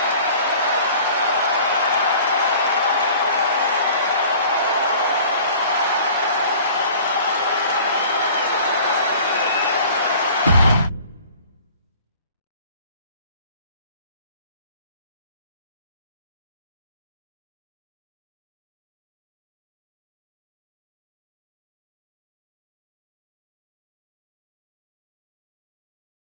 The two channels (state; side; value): inverted; both; correlation -0.47